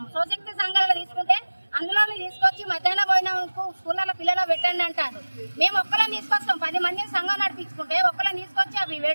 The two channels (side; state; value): both; inverted; correlation -1.00